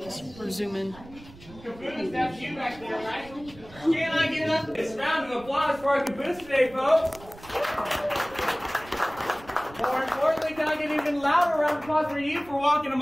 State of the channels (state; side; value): noise; right; rumble, 20 dB below the sound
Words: Or zoom in. That's you back there, right? Can I get up? It's a round of applause for our caboose today, folks. More importantly, can I get an even louder round of applause for you for walking a